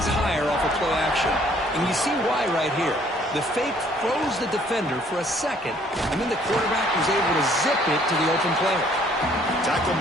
higher off of play action. And you see why right here. The fake froze the defender for a second, and then the quarterback was able to zip it to the open player. Tackle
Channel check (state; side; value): normal; both; correlation 0.61